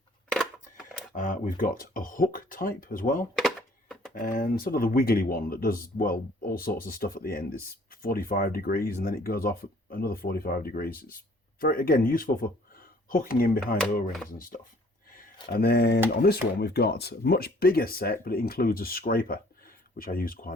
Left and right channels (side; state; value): both; normal; correlation 0.57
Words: We've got a hook type as well, and sort of the wiggly one that does, well, all sorts of stuff at the end. It's 45 degrees and then it goes off at another 45 degrees. It's very, again, useful for hooking in behind O-rings and stuff. And then on this one, we've got a much bigger set, but it includes a scraper, which I use